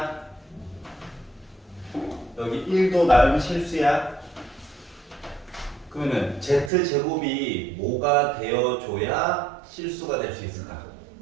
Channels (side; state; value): left; drops out; at 6.7 s